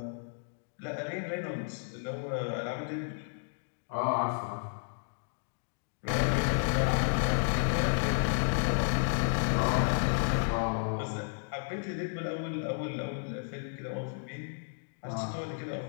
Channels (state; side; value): silent; right; digital silence